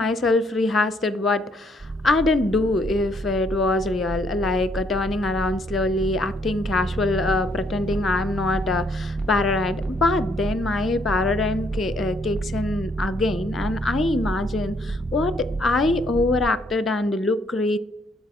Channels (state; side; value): normal; both; correlation 0.69